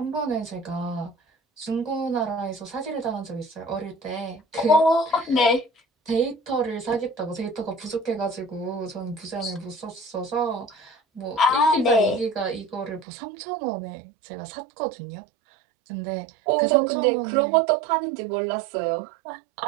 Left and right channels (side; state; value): left; drops out; at 13.1 s